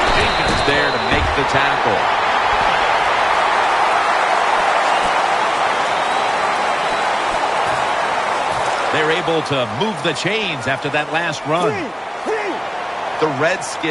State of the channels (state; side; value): identical; both; correlation 1.00